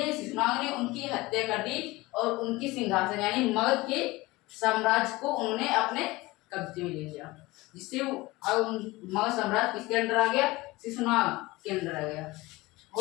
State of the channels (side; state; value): right; quieter; 20.9 dB